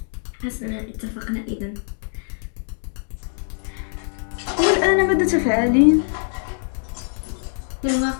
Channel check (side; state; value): right; silent; 63 dB below the other